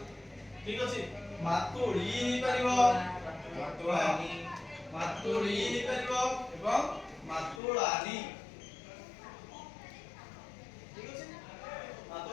ठीक अछि मातुळी हि परिबो मातुळानी मातुळी हि परिबो एवं मातुळानी ठीक अछि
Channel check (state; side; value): drops out; right; at 7.6 s